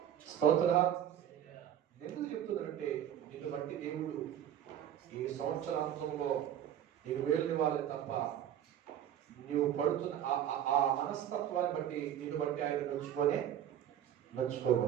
స్తోత్ర. ఎందుకు చెప్తున్నానంటే నిన్ను బట్టి దేవుడు ఈ సంవత్సరాంతంలో నీకు వేలునివ్వాలి తప్ప నీవు పడుతున్న ఆ మనస్తత్వాన్ని బట్టి నిన్ను బట్టి ఆయన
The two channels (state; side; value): quieter; left; 10.4 dB